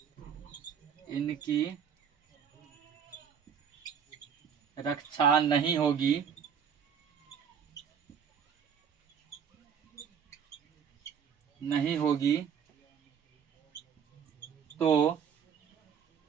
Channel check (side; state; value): left; quieter; 7.5 dB